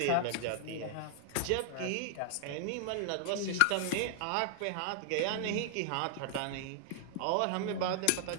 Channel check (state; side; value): different; both; correlation -0.01